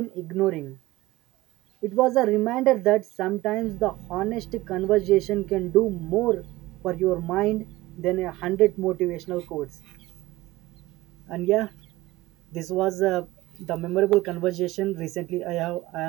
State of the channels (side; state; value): left; quieter; 18.5 dB